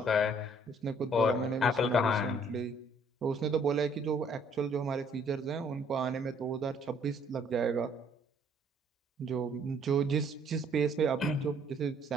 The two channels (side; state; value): both; normal; correlation 0.63